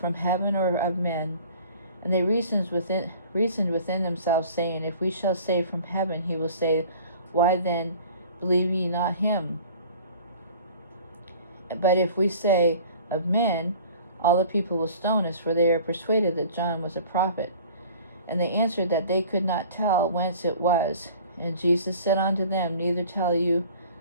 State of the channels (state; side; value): inverted; both; correlation -0.47